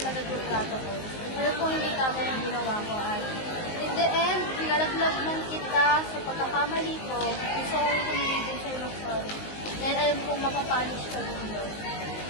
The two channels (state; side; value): late; right; 19 ms